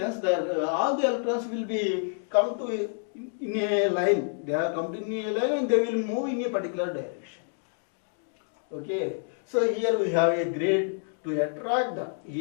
all the electrons will be come to in a line. They are come to in a line and they will move in a particular direction. Okay. So here we have a grid to attract the.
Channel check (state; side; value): silent; right; 59 dB below the other